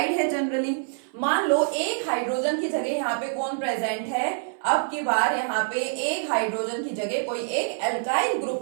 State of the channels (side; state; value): left; silent; 58 dB below the other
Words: है जनरली। मान लो एक हाइड्रोजन की जगह यहाँ पे कौन प्रेजेंट है, अब की बार यहाँ पे एक हाइड्रोजन की जगह कोई एक एल्काइल ग्रुप